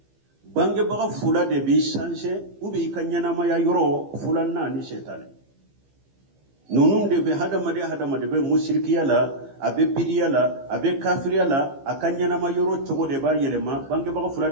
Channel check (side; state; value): left; late; 15 ms